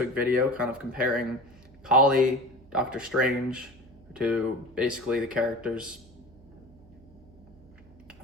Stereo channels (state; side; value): noise; right; hum, 24 dB below the sound